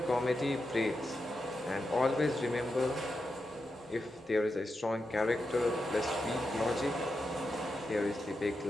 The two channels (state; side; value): normal; both; correlation 0.87